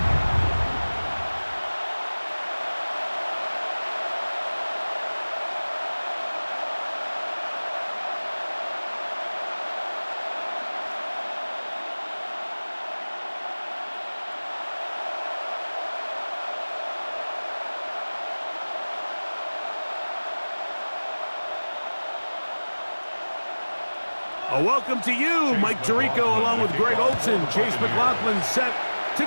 A welcome to you, Mike Tirico, along with Greg Olson. Chase McLaughlin set to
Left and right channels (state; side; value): inverted; both; correlation -1.00